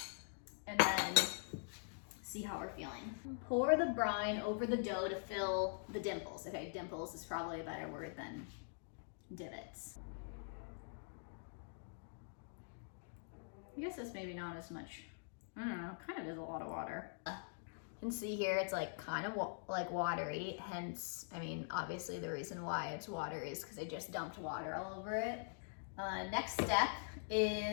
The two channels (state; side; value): silent; right; digital silence